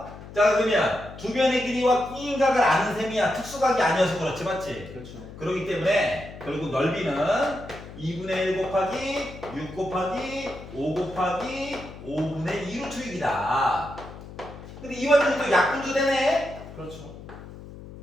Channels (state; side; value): noise; left; hum, 15 dB below the sound